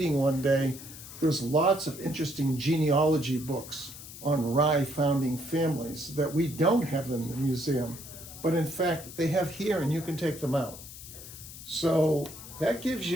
one day, there's lots of interesting genealogy books on Rye founding families that we don't have in the museum, but in fact they have here and you can take them out. So that gives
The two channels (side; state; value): left; noise; hiss, 14 dB below the sound